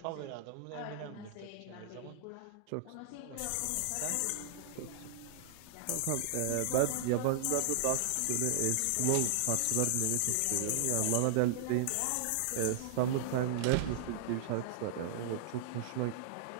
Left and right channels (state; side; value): different; both; correlation -0.01